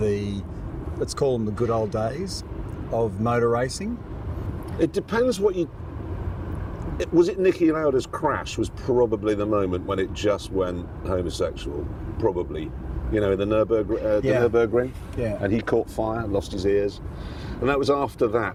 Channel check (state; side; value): identical; both; correlation 1.00